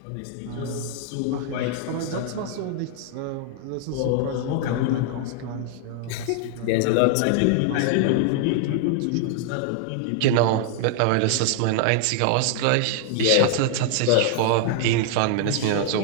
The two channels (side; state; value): both; different; correlation 0.00